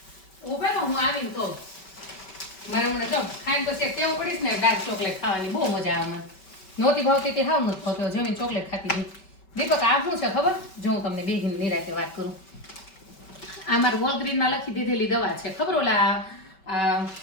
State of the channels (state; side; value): late; right; 5.2 ms